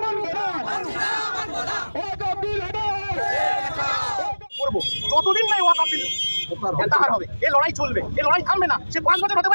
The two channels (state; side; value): inverted; both; correlation -1.00